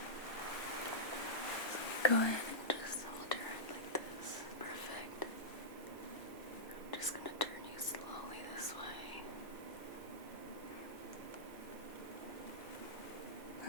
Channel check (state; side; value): normal; both; correlation -0.14